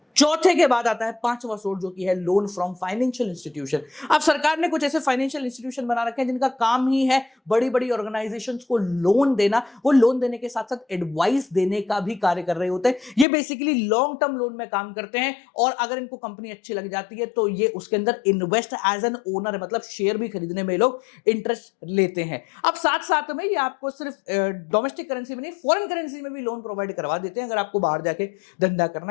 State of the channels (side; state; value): right; drops out; at 13.2 s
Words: चौथे के बाद आता है पांचवा सोर्स जो कि है लोन फ्रॉम फाइनेंशियल इंस्टीट्यूशन। अब सरकार ने कुछ ऐसे फाइनेंशियल इंस्टीट्यूशन बना रखे हैं जिनका काम ही है बड़ी बड़ी ऑर्गेनाइजेशंस को लोन देना। वो लोन देने के साथ साथ एडवाइस देने का भी कार्य कर रहे होते हैं। ये बेसिकली लॉन्ग टर्म लोन में काम करते हैं और अगर इनको कंपनी अच्छी लग जाती है तो ये उसके अंदर इन्वेस्ट एज एन ओनर है, मतलब शेयर भी खरीदने में लोग इंटरेस्ट लेते हैं। अब साथ साथ में ये आपको सिर्फ डोमेस्टिक करेंसी में नहीं, फॉरेन करेंसी में भी लोन प्रोवाइड करवा देते हैं अगर आपको बाहर जाके धंधा करना